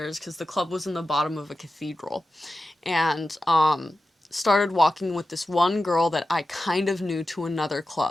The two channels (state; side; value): normal; both; correlation 0.93